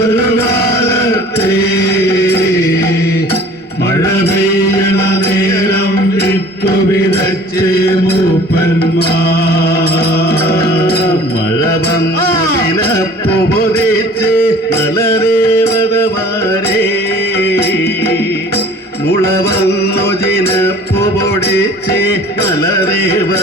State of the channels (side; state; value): both; normal; correlation 0.48